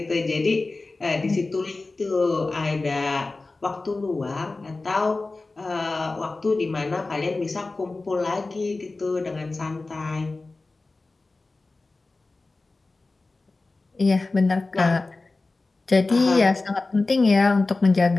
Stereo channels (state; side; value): quieter; right; 3.4 dB